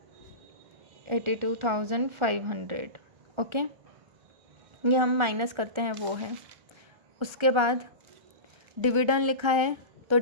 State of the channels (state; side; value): late; left; 1.4 ms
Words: ओके, ये हम माइनस करते हैं वो है। उसके बाद डिविडेंड लिखा है तो